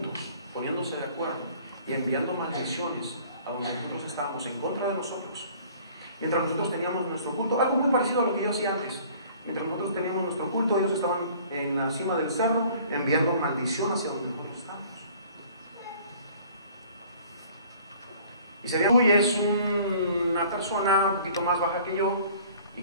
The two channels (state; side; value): inverted; both; correlation -0.52